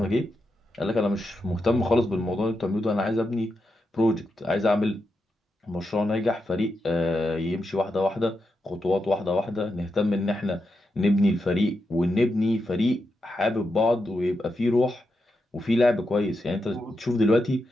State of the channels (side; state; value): both; normal; correlation 0.86